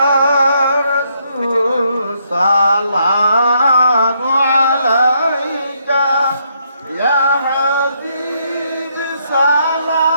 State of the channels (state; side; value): inverted; both; correlation -0.74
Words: رسول سلام عليك يا حبيب